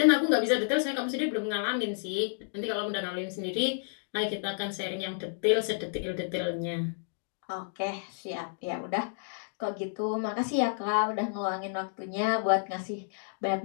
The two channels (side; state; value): right; silent; digital silence